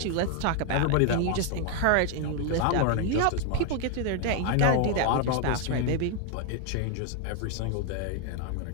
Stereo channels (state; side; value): different; both; correlation 0.00